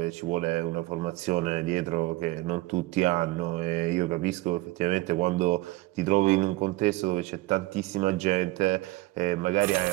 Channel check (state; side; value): quieter; left; 19.6 dB